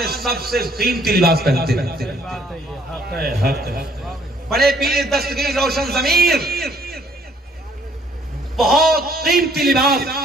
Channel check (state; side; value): normal; both; correlation 0.63